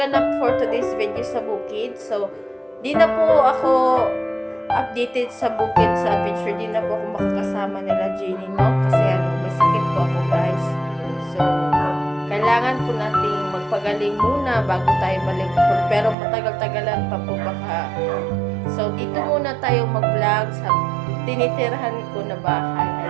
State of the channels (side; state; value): left; drops out; at 16.2 s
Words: for today's video sa bukid. So, di na po ako updated sa bukid, sa adventure. Di na po ako makakasama nila Jenny, no? Kasi may sakit po ako, guys. So, kailangan po nating magpagaling muna bago tayo balik. Pero matagal-tagalan pa po baka. So, dito muna tayo mag-vlog sa tinitirahan ko na bahay.